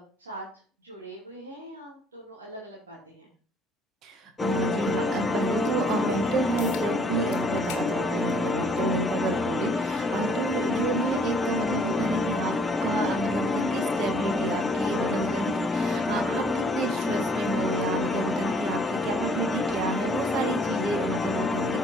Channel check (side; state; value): both; normal; correlation 0.60